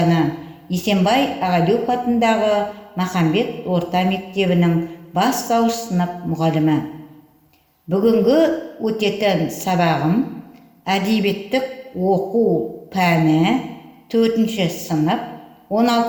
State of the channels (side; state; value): both; identical; correlation 1.00